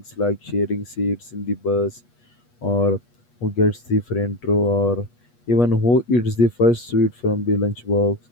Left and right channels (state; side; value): late; right; 8.3 ms